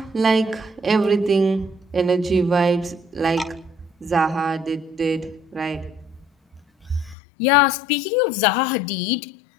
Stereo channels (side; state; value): right; drops out; at 7.2 s